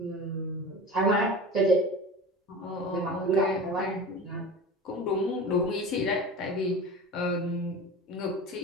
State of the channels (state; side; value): normal; both; correlation 0.33